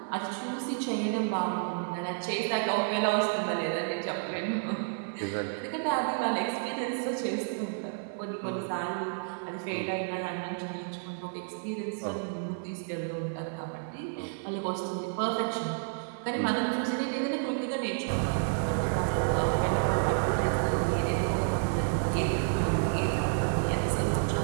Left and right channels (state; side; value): silent; left; 57 dB below the other